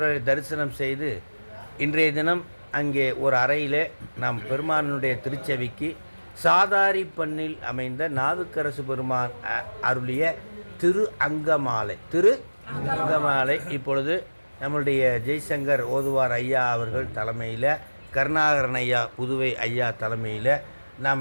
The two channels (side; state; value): both; inverted; correlation -1.00